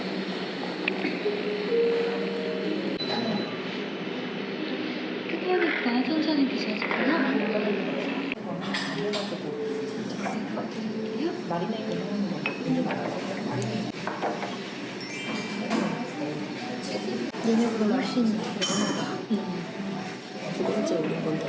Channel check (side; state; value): both; identical; correlation 1.00